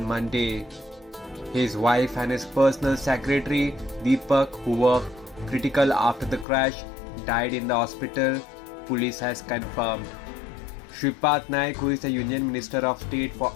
Monday. His wife and his personal secretary Deepak, who were critical after the crash, died in the hospital, police has confirmed. Shripad Naik, who is the Union Minister of State for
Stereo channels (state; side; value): drops out; right; at 6.5 s